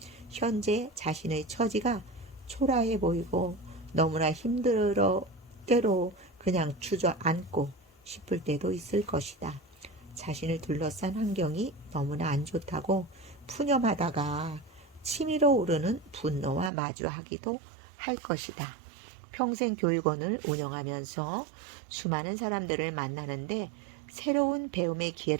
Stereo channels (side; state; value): left; drops out; at 16.7 s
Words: 현재 자신의 처지가 초라해 보이고 너무나 힘들어 때로 그냥 주저앉고 싶을 때도 있을 것이다. 자신을 둘러싼 환경이 너무나 안 좋다고 푸념하다가 치밀어 오르는 분노와 마주하기도 할 것이다. 평생 교육원을 운영하면서 수많은 사람들을 만나는데 새로운 배움의